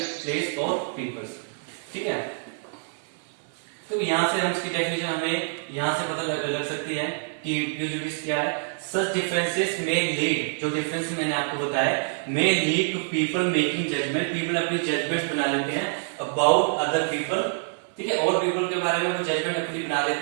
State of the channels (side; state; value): left; silent; digital silence